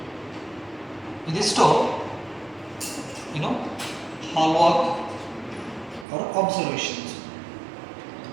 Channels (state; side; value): drops out; left; at 6.1 s